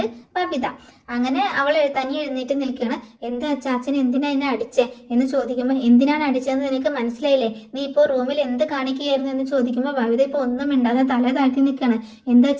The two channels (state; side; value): identical; both; correlation 1.00